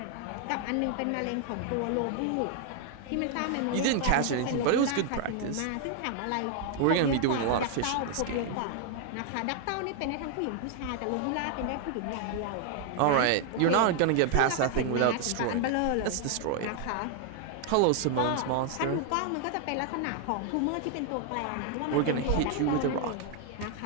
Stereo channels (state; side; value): different; both; correlation 0.00